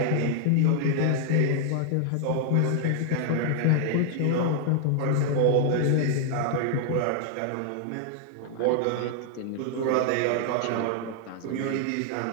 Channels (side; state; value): both; different; correlation 0.00